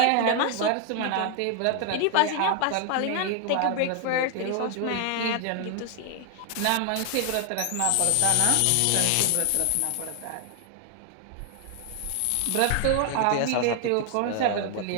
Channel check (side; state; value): both; different; correlation 0.00